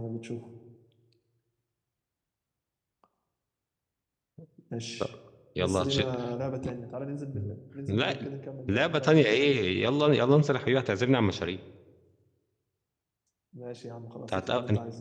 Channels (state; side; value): identical; both; correlation 1.00